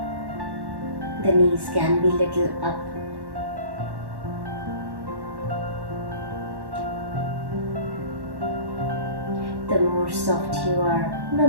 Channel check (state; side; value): late; left; 1.1 ms